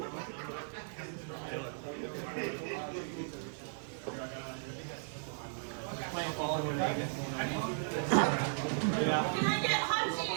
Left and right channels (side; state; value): left; silent; digital silence